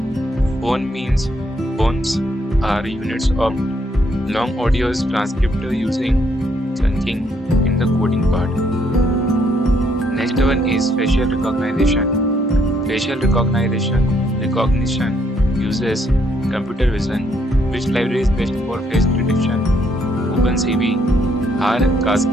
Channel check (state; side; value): normal; both; correlation 0.71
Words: Phones are units of long audios transcript using chunking in the coding part. Next one is facial recognition. Facial recognition uses computer vision. Which library is best for face detection? OpenCV. R